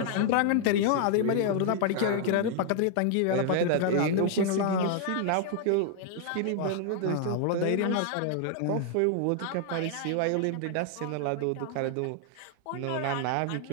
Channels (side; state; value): both; different; correlation 0.00